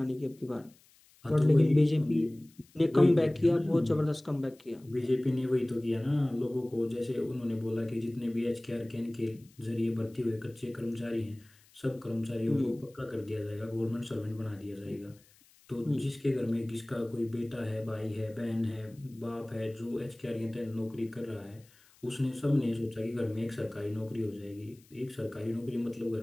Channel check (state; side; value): noise; left; hiss, 29 dB below the sound